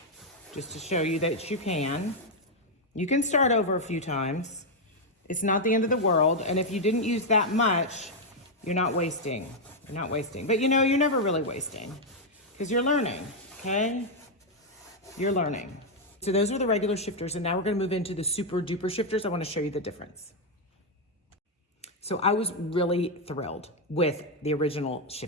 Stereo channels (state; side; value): normal; both; correlation 0.00